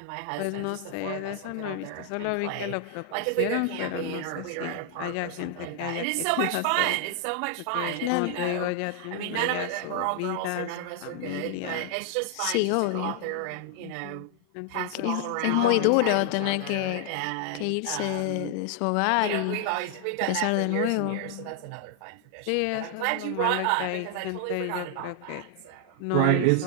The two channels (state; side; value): different; both; correlation 0.00